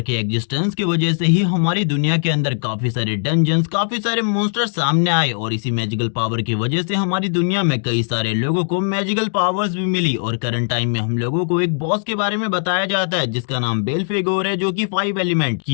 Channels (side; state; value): right; silent; digital silence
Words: के एग्जिस्टेंस की वजह से ही हमारी दुनिया के अंदर काफी सारे डंजन्स, काफी सारे मॉन्स्टर सामने आए और इसी मैजिकल पावर की वजह से हमारी दुनिया में कई सारे लोगों को मैजिकल पावर्स भी मिली। और करंट टाइम में हम लोगों को एक बॉस के बारे में बताया जाता है जिसका नाम बेल्फेगोर है, जो कि 5 एलिमेंट